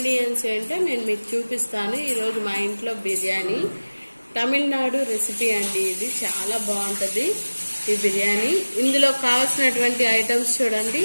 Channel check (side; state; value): both; inverted; correlation -1.00